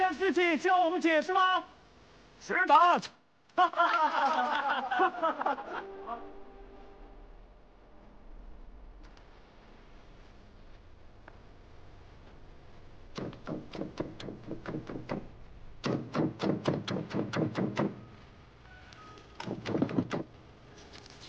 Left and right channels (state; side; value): identical; both; correlation 1.00